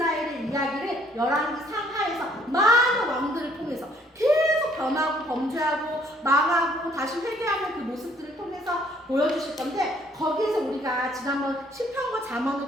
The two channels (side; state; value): both; normal; correlation 0.63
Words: 이야기를 열왕기 상하에서 많은 왕들을 통해서 계속 변하고 범죄하고 망하고 다시 회개하는 그 모습들을 통해서 보여주실 건데, 거기에서 우리가 지난번 시편과